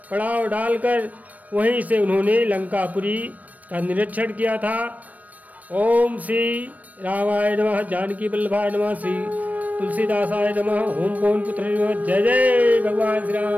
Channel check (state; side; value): late; left; 0.073 ms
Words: पड़ाव डालकर वहीं से उन्होंने लंकापुरी का निरीक्षण किया था। ओम श्री रामाय नमः, जानकी वल्लभाय नमः, श्री तुलसीदासाय नमः। ओम पवन पुत्र जय जय भगवान श्री